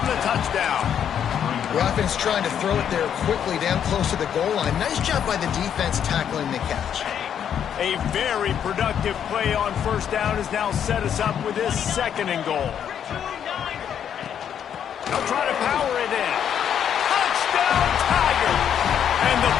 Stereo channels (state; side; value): quieter; right; 8.8 dB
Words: the touchdown. The offense trying to throw it there quickly down close to the goal line. Nice job by the defense tackling the catch. A very productive play on 1st down has now set us up with this 2nd and goal. They'll try to power it in. Touchdown, Tigers! And the